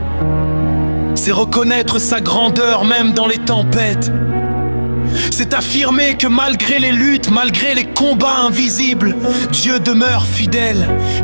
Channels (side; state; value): both; inverted; correlation -1.00